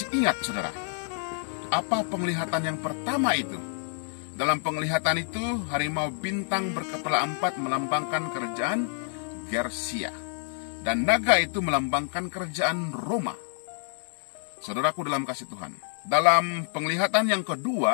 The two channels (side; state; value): right; silent; 57 dB below the other